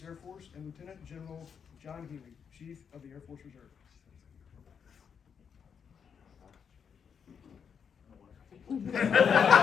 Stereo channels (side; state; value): right; quieter; 7.0 dB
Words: Air Force, and Lieutenant General John Healy, Chief of the Air Force Reserve.